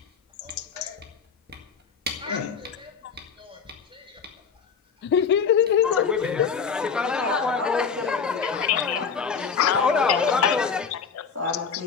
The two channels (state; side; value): quieter; right; 6.2 dB